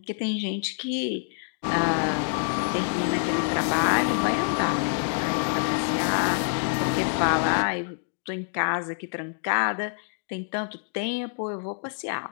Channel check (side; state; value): right; silent; digital silence